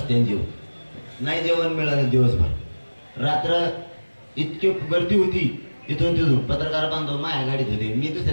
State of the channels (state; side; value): inverted; both; correlation -1.00